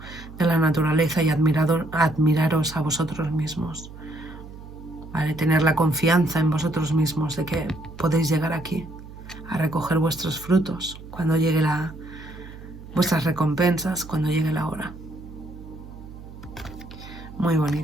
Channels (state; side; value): noise; right; hum, 15 dB below the sound